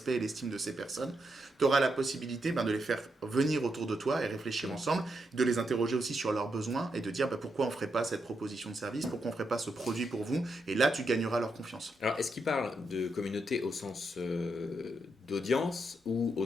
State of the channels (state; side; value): normal; both; correlation 0.82